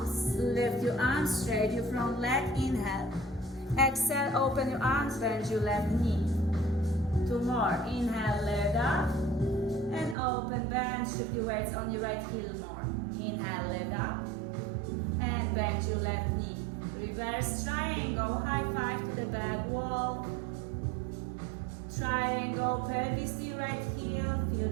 lift your arms straight, your front leg, inhale. Exhale, open your arms, bend your left knee. Two more, inhale, leg up. And open, bend, shift your weights on your right heel more. Inhale, leg up. And bend your left knee. Reverse triangle, high five to the back wall. Triangle, pelvis to your right heel, feel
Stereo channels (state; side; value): drops out; left; at 10.2 s